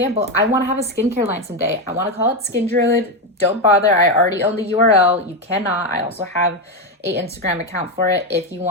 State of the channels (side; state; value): both; normal; correlation 0.10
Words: I want to have a skincare line someday. I want to call it Skin Druid. Don't bother. I already own the URL. You cannot. I also have a Instagram account for it if you